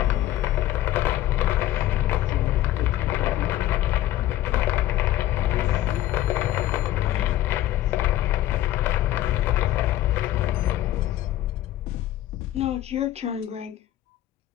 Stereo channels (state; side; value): quieter; right; 14.0 dB